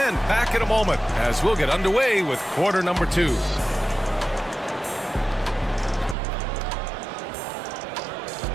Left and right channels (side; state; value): left; drops out; at 6.2 s